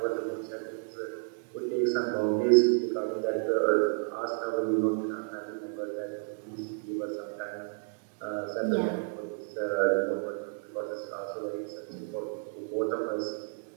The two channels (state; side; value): silent; left; 57 dB below the other